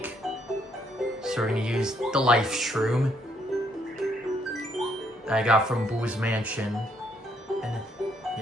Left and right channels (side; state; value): both; normal; correlation 0.71